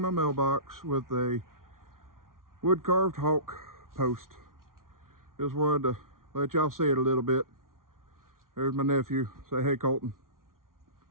mailbox with a wood carved hawk post. Just wanted to let y'all see it a little bit. There's my nephew. Say hey, Colton.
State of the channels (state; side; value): late; left; 0.92 ms